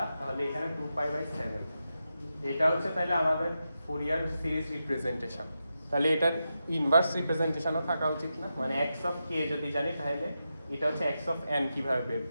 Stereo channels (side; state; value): both; inverted; correlation -0.88